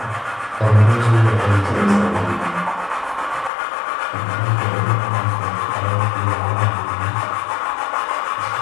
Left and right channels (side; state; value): right; drops out; at 3.5 s